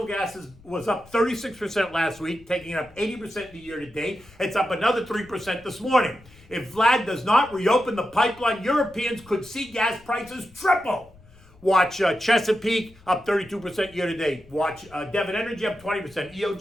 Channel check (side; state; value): left; noise; rumble, 25 dB below the sound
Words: gas was up 36% last week, taking it up 80% the year to date. It's up another 3% this morning. If Vlad does not reopen the pipeline, Europeans could see gas prices triple. Watch Chesapeake up 32% year to date. Watch Devon Energy up 20%.